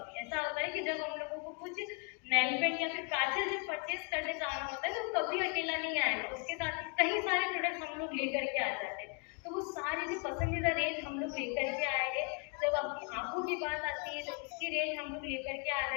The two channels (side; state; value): right; quieter; 35.8 dB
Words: है। ऐसा होता है कि जब हम लोगों को कुछ नेल पेंट या फिर काजल जब परचेज करने जाना होता है तो कभी अकेला नहीं आएगा, उसके साथ ही कई सारे प्रोडक्ट्स हम लोग लेकर के आ जाते हैं। तो वो सारी जो पसंदीदा रेंज हम लोग लेकर के आए हैं। जब आपकी आंखों की बात आती है तो उसकी रेंज हम लोग लेकर के आ